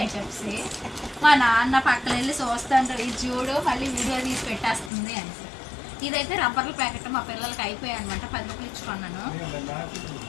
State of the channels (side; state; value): right; drops out; at 4.9 s